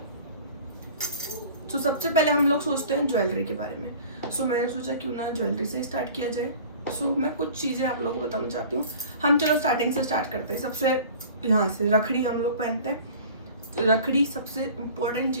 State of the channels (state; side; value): inverted; both; correlation -0.44